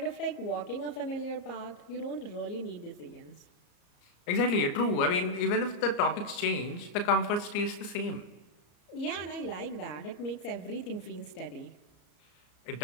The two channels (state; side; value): late; right; 34 ms